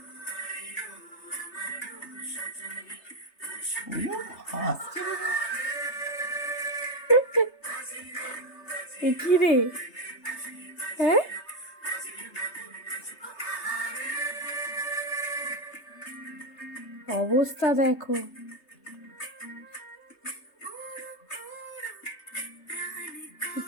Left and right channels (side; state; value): right; late; 3.3 ms